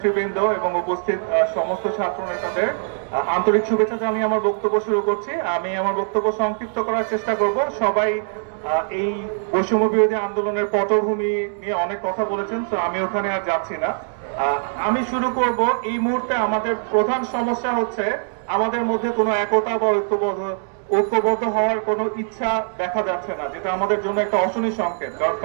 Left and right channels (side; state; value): left; silent; digital silence